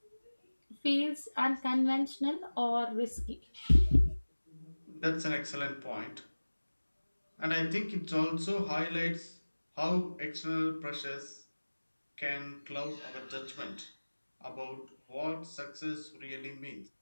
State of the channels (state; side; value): inverted; both; correlation -1.00